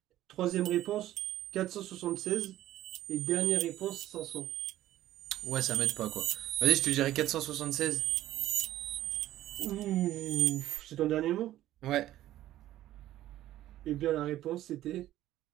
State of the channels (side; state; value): left; quieter; 13.8 dB